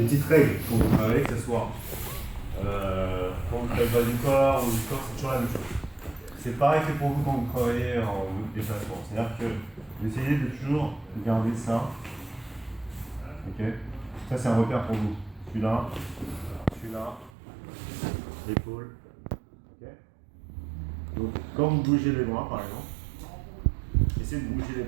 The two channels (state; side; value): drops out; left; at 17.3 s